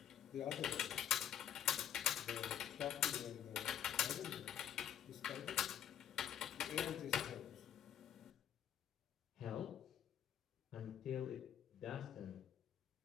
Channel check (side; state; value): right; quieter; 10.0 dB